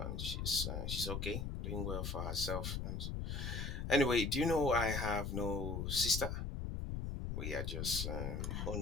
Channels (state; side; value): noise; left; rumble, 3 dB below the sound